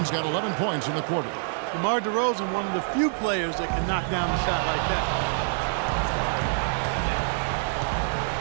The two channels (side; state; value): left; silent; 61 dB below the other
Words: got 11 points in the quarter. DeMar DeRozan, one of the few players that can knock down a shot like that.